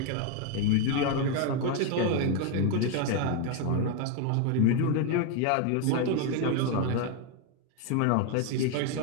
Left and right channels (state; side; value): different; both; correlation 0.01